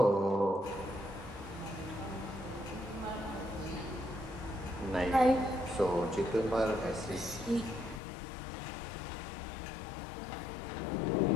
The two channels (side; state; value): right; drops out; at 8.0 s